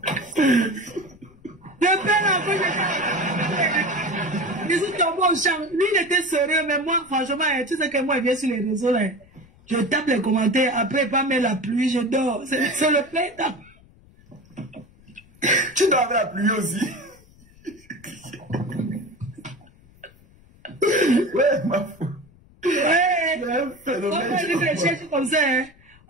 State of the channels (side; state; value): left; noise; rumble, 27 dB below the sound